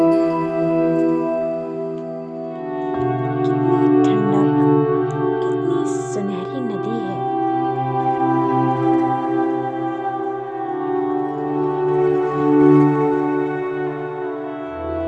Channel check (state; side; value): identical; both; correlation 1.00